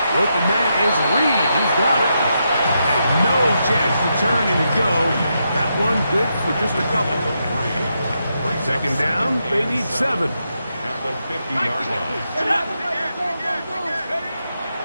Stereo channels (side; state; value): both; inverted; correlation -0.83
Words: The open man is Reed. He's got it. And no chance to turn and go. That one good for just a couple. Second down, they need 7. At the 50-yard line.